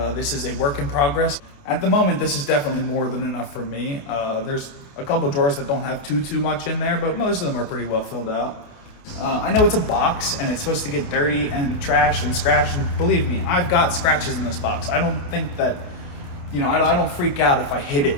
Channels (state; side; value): late; right; 28 ms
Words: This is a work in progress. At the moment, this is definitely more than enough for me. There's a couple drawers that don't have too much in there, but most of them are pretty well filled out. I know it's a box and it's supposed to get dirty and trashed and scratched, and believe me, I've got scratches in this box. I don't think that, I don't freak out if I hit it